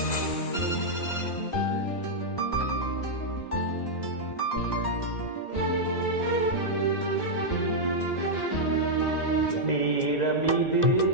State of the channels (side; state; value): right; late; 2.0 ms